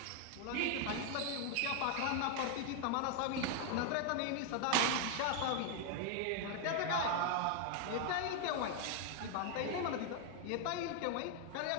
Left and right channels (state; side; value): different; both; correlation 0.00